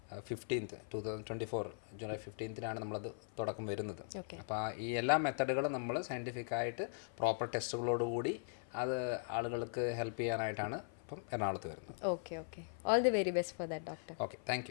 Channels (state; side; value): silent; right; 51 dB below the other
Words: 15th 2024 ജൂലൈ 15th നമ്മളത് തുടക്കം വരുന്നത്. അപ്പോൾ ഈ എല്ലാ മെത്തഡുകളും നമ്മൾ സയൻറ്റിഫിക്കായിട്ട് പ്രോപ്പർ ടെസ്റ്റുകളോടുകൂടി അത് ആളുകൾക്ക് ഹെൽപ്പ് ചെയ്യാനായിട്ടാണ് ഇപ്പം എറണാകുളത്ത് വരുന്നത്. Okay. All the very best for that doctor. Okay,